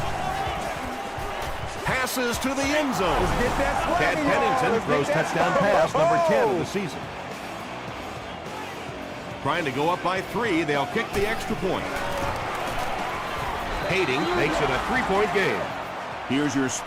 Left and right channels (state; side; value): identical; both; correlation 1.00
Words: Passes to the end zone. Chad Pennington throws touchdown pass number 10 of the season. Trying to go up by 3. They'll kick the extra point. Skating makes it a 3-point game. Here's your